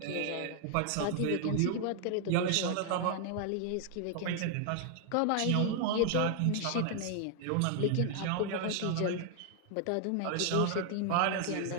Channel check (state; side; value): different; both; correlation 0.00